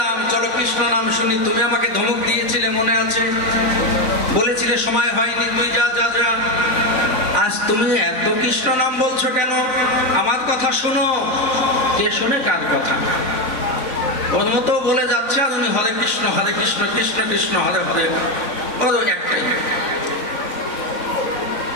চলো কৃষ্ণ নাম শুনি, তুমি আমাকে ধমক দিয়েছিলে মনে আছে? বলেছিলে সময় হয়নি, তুই যা যা যা। আজ তুমি এত কৃষ্ণ নাম বলছো কেন? আমার কথা শোনো। কে শোনে কার কথা? ওর মতো বলে যাচ্ছে আর উনি হরে কৃষ্ণ কৃষ্ণ কৃষ্ণ হরে হরে, ওর একটাই।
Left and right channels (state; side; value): late; right; 4.0 ms